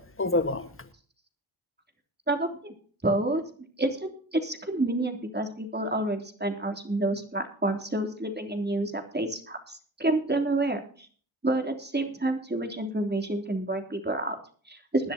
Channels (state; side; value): normal; both; correlation 0.40